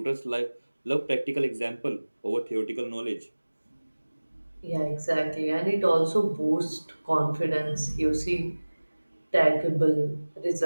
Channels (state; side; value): inverted; both; correlation -1.00